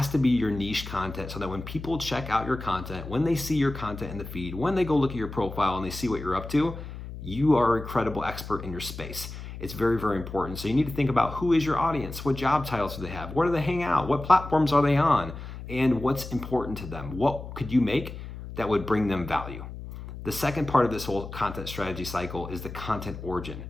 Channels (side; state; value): left; noise; hum, 10 dB below the sound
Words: to be your niche content so that when people check out your content, when they see your content in the feed, when they go look at your profile and they see what you're up to, you are a credible expert in your space. It's very, very important. So you need to think about who is your audience, what job titles do they have, where do they hang out, what platforms are they on, and what's important to them. What could you make that would bring them value? The second part of this whole content strategy cycle is the content origin.